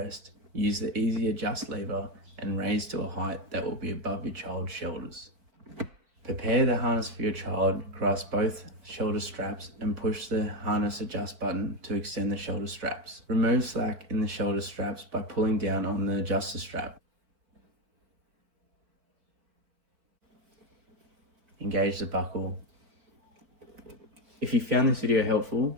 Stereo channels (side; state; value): left; late; 4.5 ms